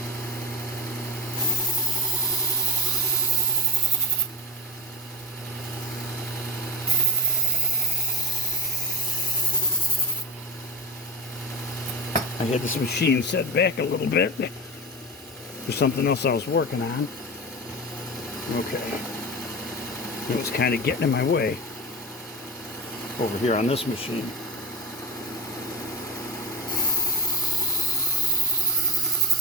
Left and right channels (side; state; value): both; normal; correlation 0.21